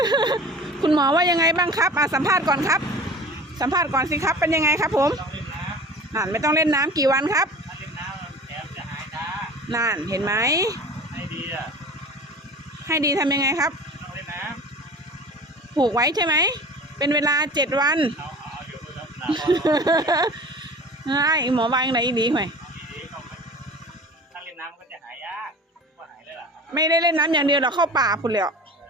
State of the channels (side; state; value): both; normal; correlation 0.39